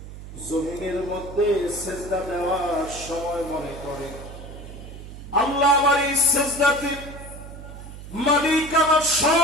জমিনের মধ্যে সিজদা দেওয়ার সময় মনে করে আল্লাহ আমার এই সিজদাতে মালিক আমার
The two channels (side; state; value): right; noise; hum, 13 dB below the sound